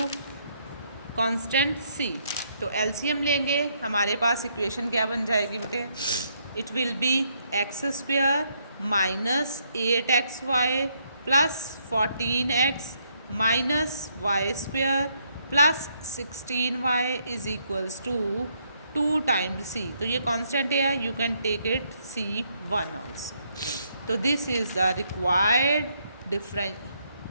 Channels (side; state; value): both; inverted; correlation -0.73